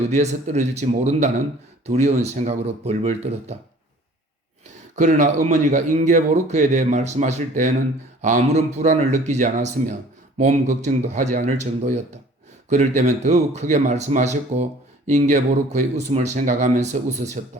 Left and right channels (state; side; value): normal; both; correlation 0.51